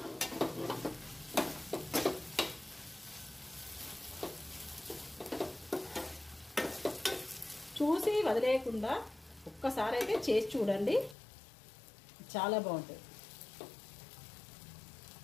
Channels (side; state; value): right; drops out; at 11.2 s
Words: చూసి వదిలేయకుండా ఒక్కసారి అయితే చేసి చూడండి, చాలా బాగుంటుంది.